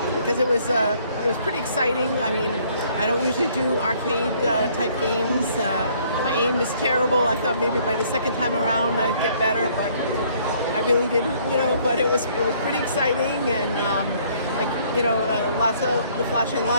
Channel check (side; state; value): both; inverted; correlation -0.62